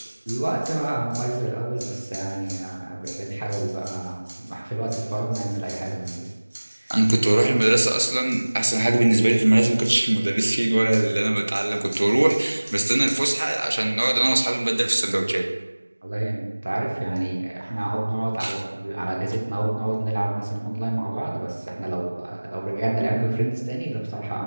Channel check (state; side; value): inverted; both; correlation -1.00